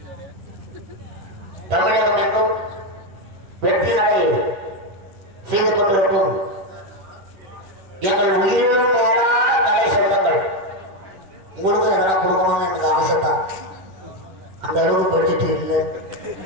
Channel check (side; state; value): left; late; 10 ms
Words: தமிழகம் எங்கும் வெற்றி நடை செய்து கொண்டிருக்கும் எங்கள் உயிரிலும் மேலான கலை சொந்தங்கள். உங்களுக்கும் எதனா கொடுக்கணும்னு எனக்கு ஆசை தான். அந்த அளவுக்கு பட்ஜெட் இல்லை.